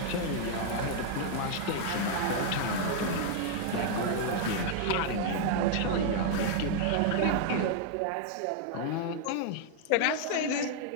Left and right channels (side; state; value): both; different; correlation -0.01